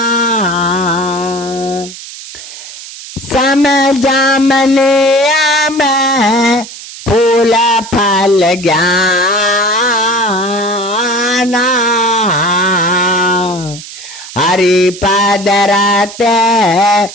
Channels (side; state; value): right; noise; hiss, 14 dB below the sound